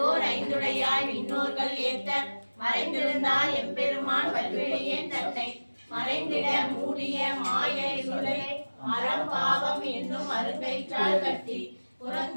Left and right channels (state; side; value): inverted; both; correlation -1.00